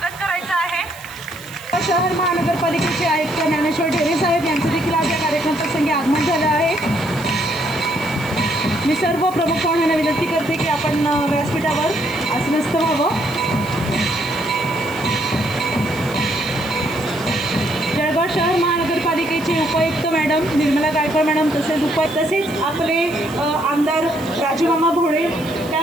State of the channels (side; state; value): right; noise; hiss, 19 dB below the sound